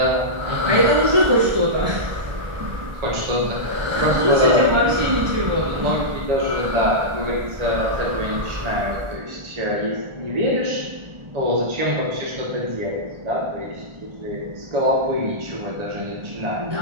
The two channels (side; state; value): left; late; 1.4 ms